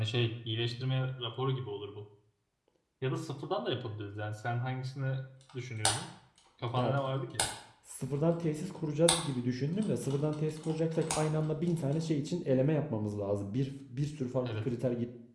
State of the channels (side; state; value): both; identical; correlation 1.00